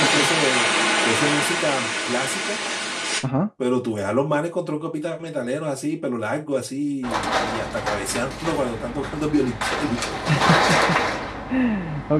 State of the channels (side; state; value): both; identical; correlation 1.00